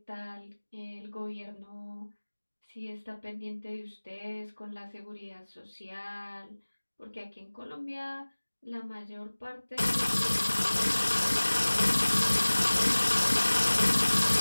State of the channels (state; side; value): inverted; both; correlation -1.00